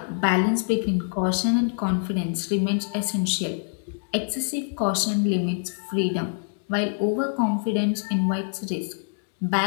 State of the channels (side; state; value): right; silent; digital silence